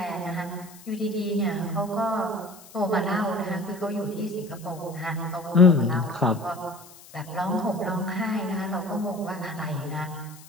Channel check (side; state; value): left; noise; hiss, 21 dB below the sound